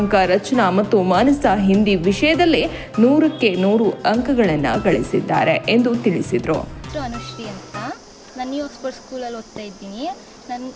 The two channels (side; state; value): both; identical; correlation 1.00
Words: ರಚನಾ ಮತ್ತು ಮಾನಸ ಹಿಂದಿ ವಿಷಯದಲ್ಲಿ 100ಕ್ಕೆ 100 ಅಂಕಗಳನ್ನು ಗಳಿಸಿದ್ದಾರೆ ಎಂದು ತಿಳಿಸಿದರು. ಅನುಶ್ರೀ ಅಂತ ನಾನು ನ್ಯೂ ಆಕ್ಸ್ಫರ್ಡ್ ಸ್ಕೂಲಲ್ಲಿ ಓದ್ತಾ ಇದ್ದೀನಿ.